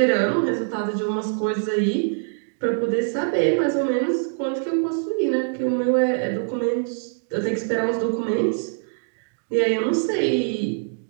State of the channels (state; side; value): silent; left; digital silence